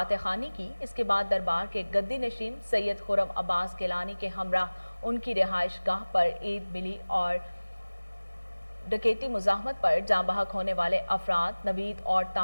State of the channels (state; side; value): inverted; both; correlation -1.00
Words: खानी की। इसके बाद दरबार के गद्दी नशीन सैयद खुरम अब्बास गिलानी के हमरा उनकी रिहाइश गाह पर ईद मिली और डकैती मुजाहमत पर जाँ बहक होने वाले अफराद नवीद और